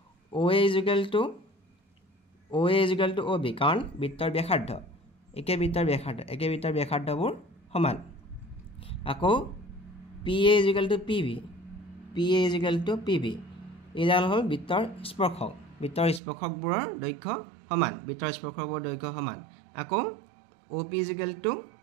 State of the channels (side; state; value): left; drops out; at 16.2 s